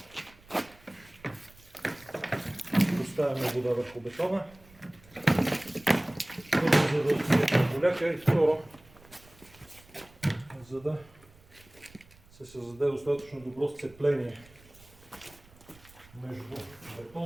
поставяме вода върху бетона. Първо, за да отсветим поляка, и второ, за да се създаде достатъчно добро сцепление между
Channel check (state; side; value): noise; right; rumble, 25 dB below the sound